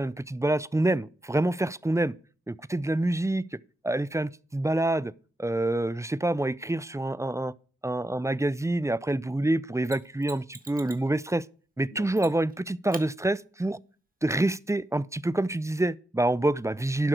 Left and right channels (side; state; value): both; normal; correlation 0.87